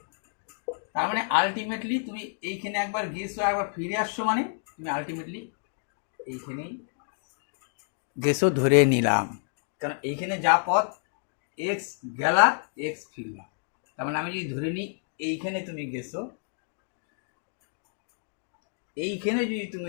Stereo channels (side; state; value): right; silent; digital silence